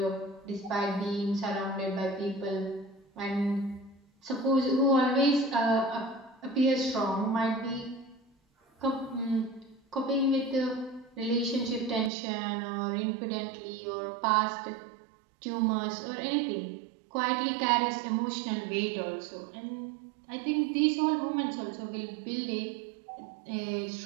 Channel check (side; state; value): left; drops out; at 12.1 s